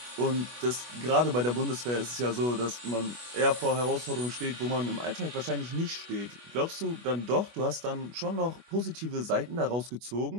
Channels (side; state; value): left; late; 25 ms